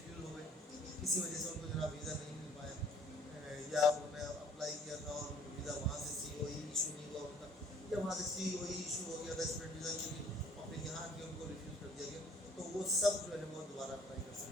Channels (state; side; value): normal; both; correlation 0.57